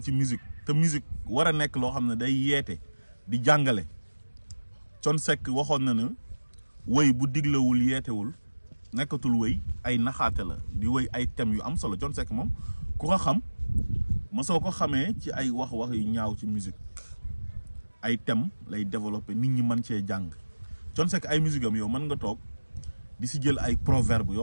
ci musique te musique war a nekk loo xam ne day yeete di jàngale Thione Seck waxoon na ne wëy bu diglewul yeetewul nekkatul wëy ay naxaate la di wëy ay thèmes yu am solo Thione Seck moom ku ko xam ma soo ko xamee ci ay wax yu ñaaw ci musique ay thèmes lay développer nit ñi mën cee jàng Thione Seck ay musique am yow mën nga toog di si jël ay proverbe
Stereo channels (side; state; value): both; inverted; correlation -1.00